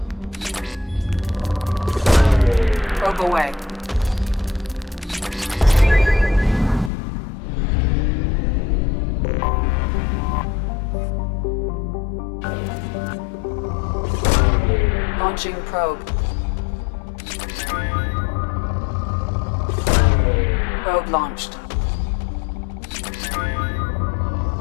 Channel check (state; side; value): drops out; right; at 6.9 s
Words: Probe away. Launching probe. Probe launched.